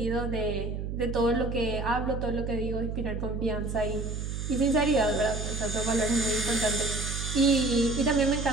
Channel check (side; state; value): right; noise; hum, 4 dB below the sound